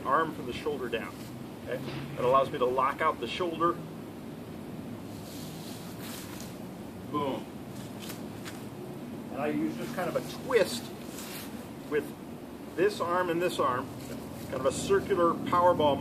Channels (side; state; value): both; identical; correlation 1.00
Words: arm from the shoulder down. Okay? That allows me to lock out the shoulder. Boom. And I use just kind of a twist with this arm and this arm, kind of a circular powerball